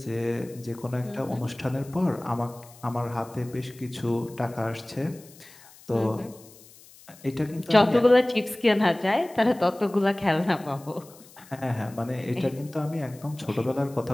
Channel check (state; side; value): noise; left; hiss, 23 dB below the sound